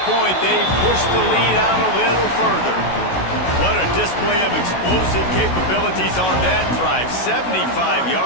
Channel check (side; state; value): right; late; 16 ms